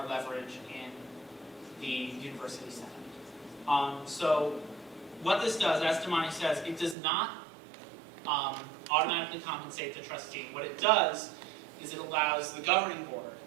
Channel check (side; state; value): left; drops out; at 7.0 s